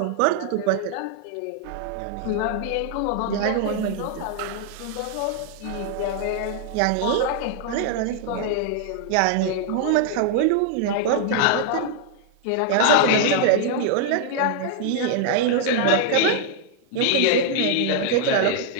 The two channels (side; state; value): both; different; correlation 0.00